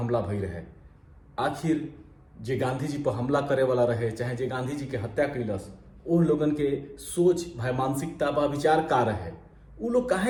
भई रहे। आखिर जे गांधी जी पर हमला करे वाला रहे चाहे जे गांधी जी के हत्या कैलस ओ लोगन के सोच भाई मानसिकता बा विचार का रहे। उ लोग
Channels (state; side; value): identical; both; correlation 1.00